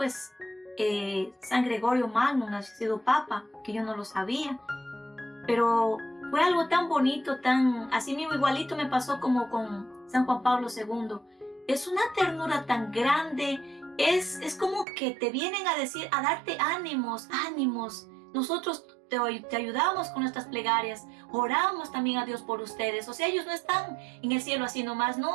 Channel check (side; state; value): left; drops out; at 14.9 s